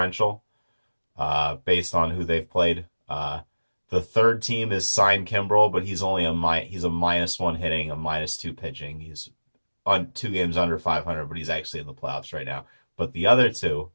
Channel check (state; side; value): inverted; both; correlation -1.00